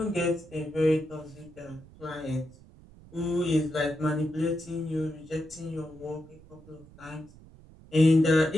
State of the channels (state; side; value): noise; right; rumble, 22 dB below the sound